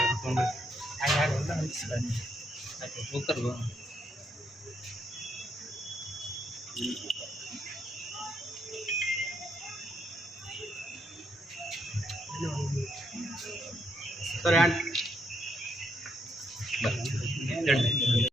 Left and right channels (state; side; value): normal; both; correlation 0.76